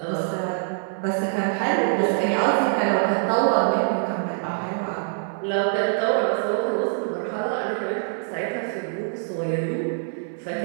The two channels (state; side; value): silent; left; digital silence